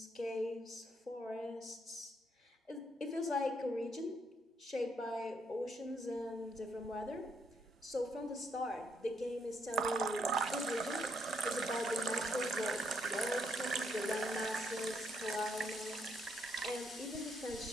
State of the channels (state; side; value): normal; both; correlation 0.74